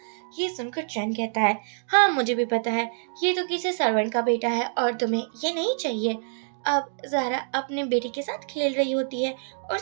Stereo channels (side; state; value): left; silent; digital silence